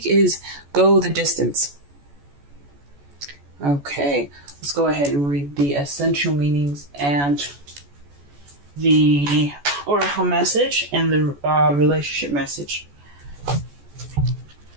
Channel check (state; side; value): late; left; 14 ms